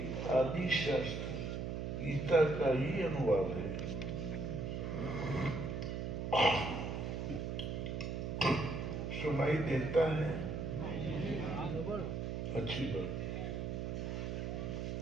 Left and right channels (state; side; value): noise; right; hum, 3 dB below the sound